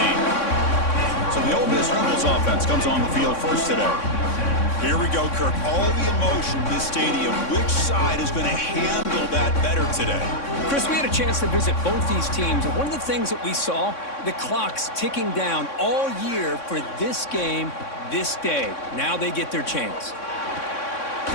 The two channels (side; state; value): right; late; 3.6 ms